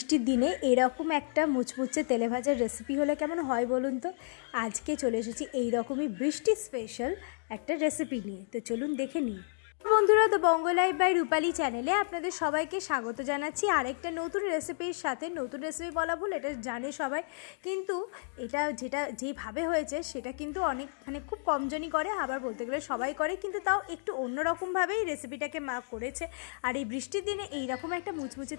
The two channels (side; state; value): right; silent; digital silence